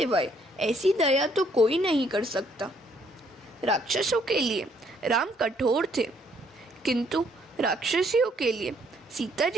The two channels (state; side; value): normal; both; correlation 0.67